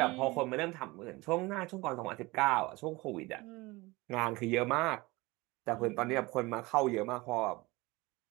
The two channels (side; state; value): left; quieter; 22.5 dB